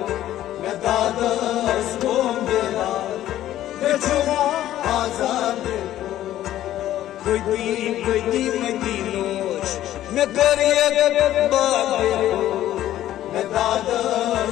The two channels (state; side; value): quieter; right; 13.1 dB